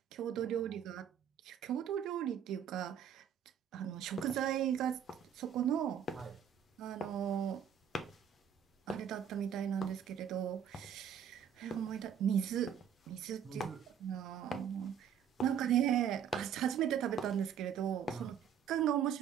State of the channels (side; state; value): left; quieter; 8.4 dB